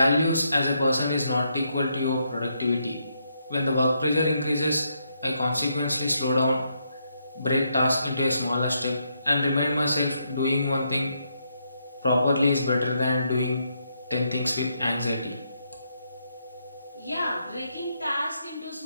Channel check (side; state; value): both; inverted; correlation -0.78